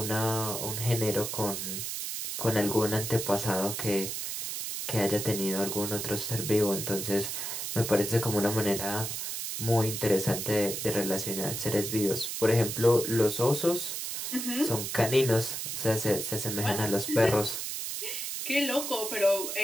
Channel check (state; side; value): noise; right; hiss, 4 dB below the sound